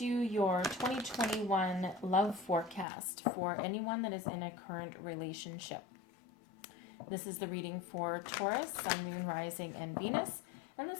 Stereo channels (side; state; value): right; drops out; at 2.9 s